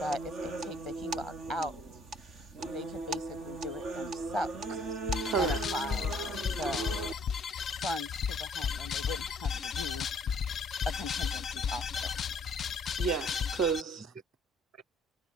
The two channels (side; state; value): both; normal; correlation 0.60